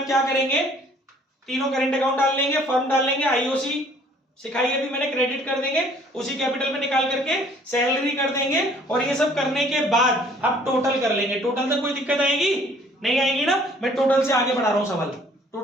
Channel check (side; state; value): both; normal; correlation 0.57